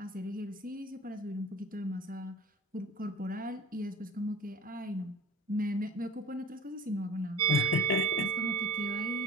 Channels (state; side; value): normal; both; correlation 0.40